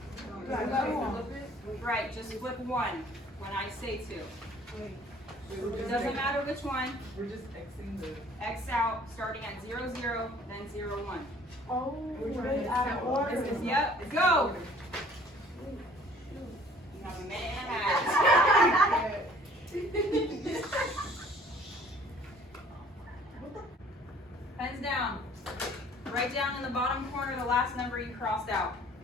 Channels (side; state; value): both; normal; correlation 0.54